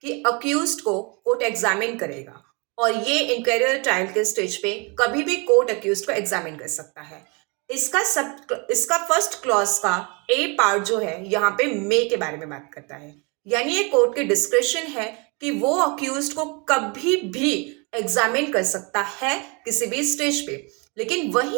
कि अक्यूज्ड को कोर्ट एग्जामिन करेगा और ये इंक्वायरी ट्रायल के स्टेज पे कभी भी कोर्ट अक्यूज्ड को एग्जामिन कर सकता है। इसका फर्स्ट क्लॉज का ए पार्ट जो है यहाँ पे मे के बारे में बात करता है, यानी ये कोर्ट की डिस्क्रिप्शन है कि वो अक्यूज्ड को कभी भी एग्जामिन कर सकता है किसी भी स्टेज पे। लेकिन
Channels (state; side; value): quieter; left; 31.1 dB